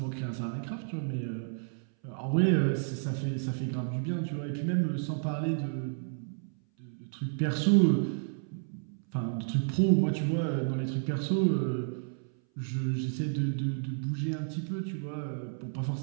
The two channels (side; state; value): left; silent; 57 dB below the other